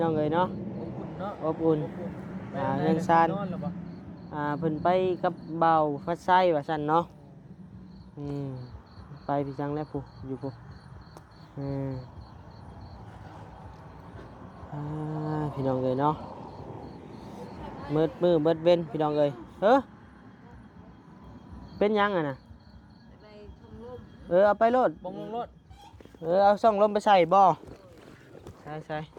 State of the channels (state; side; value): identical; both; correlation 1.00